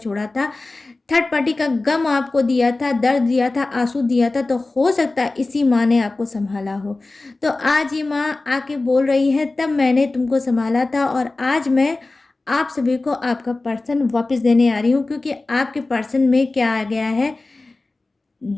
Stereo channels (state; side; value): quieter; right; 3.2 dB